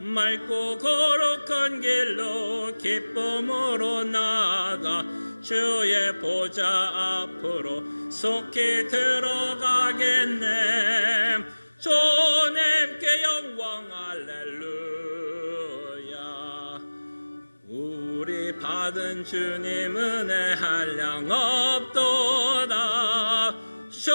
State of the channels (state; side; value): inverted; both; correlation -1.00